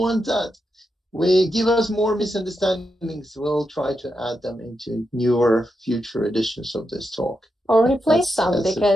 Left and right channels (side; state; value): both; normal; correlation 0.86